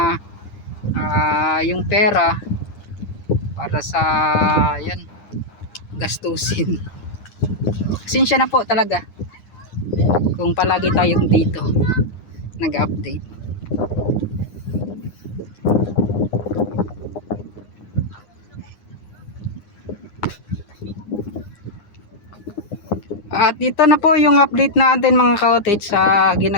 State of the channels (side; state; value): right; late; 9.8 ms